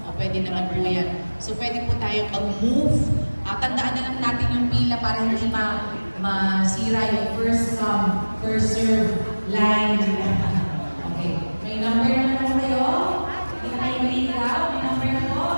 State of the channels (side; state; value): both; inverted; correlation -1.00